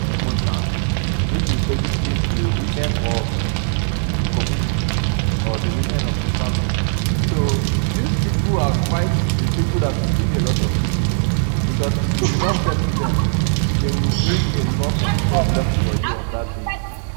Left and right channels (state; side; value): silent; left; digital silence